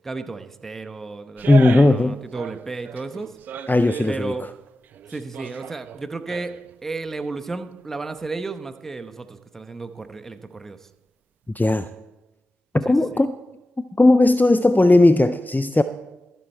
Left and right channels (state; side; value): normal; both; correlation 0.94